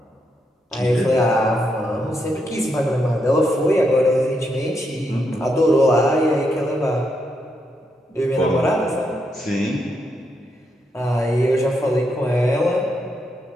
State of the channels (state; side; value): normal; both; correlation 0.80